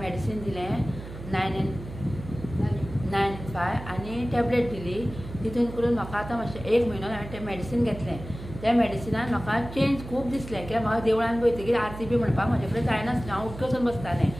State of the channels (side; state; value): right; noise; hum, 12 dB below the sound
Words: दिलें 995 आनी टॅबलेट दिली. तितून करून म्हाका आतां मातशें 1 म्हयनो हांवें तें मॅडिसीन घेतलें. त्या मॅडिसिनान म्हाका चेंज खूब दिसलें, कित्याक म्हाका देवळान वयतकीर आरती बी म्हणपाक म्हाजे कडेन जायनासलें. हांव उठ्ठ वचून बसतालें